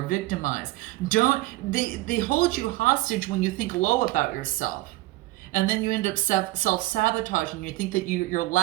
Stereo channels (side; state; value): left; quieter; 18.8 dB